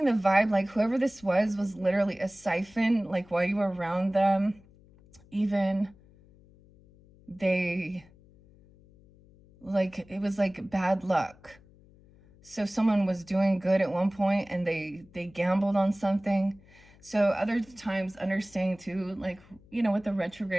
the vibe like whoever this was literally a siphon, like while you were around them, even they, like, it was like bad luck. So someone was doing good at one point and they gambled on something. So other times understanding too, like, with the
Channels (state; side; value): noise; left; hum, 26 dB below the sound